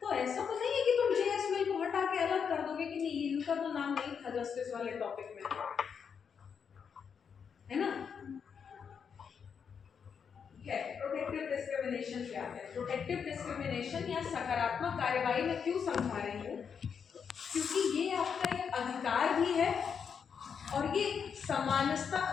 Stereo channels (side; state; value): right; quieter; 6.8 dB